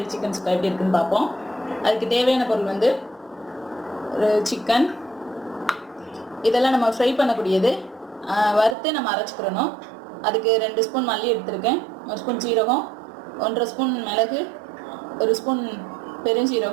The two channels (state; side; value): drops out; left; at 8.8 s